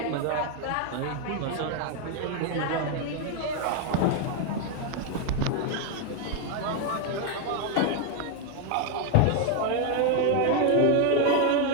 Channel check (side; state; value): both; different; correlation 0.01